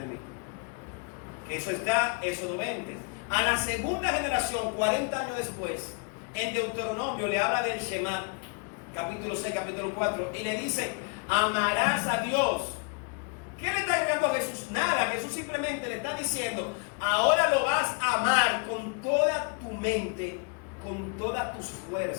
mí. Que eso está, Éxodo 20. A la segunda generación, 40 años después, en Deuteronomio le habla del Shema, capítulo 6, capítulo 4, y le dice: amarás a Dios. ¿Qué le está llegando a Jesús? Nada. Jesús simplemente le está diciendo: ahora lo vas a amar con toda tu mente, con todas tus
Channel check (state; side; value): quieter; right; 37.4 dB